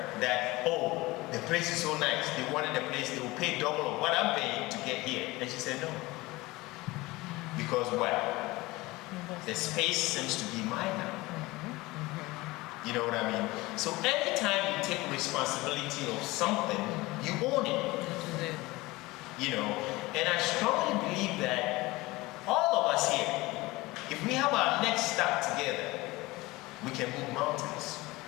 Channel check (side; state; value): right; quieter; 20.9 dB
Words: that, oh, the place is so nice. They wanted the place, they will pay double of what I'm paying to get here. And she said, no. Because what? The space seems to be mine now. You know what I mean? So anytime you take responsibility of something, you own it. You know, and I strongly believe that all of us here, if we have our next step together, we can move mountains.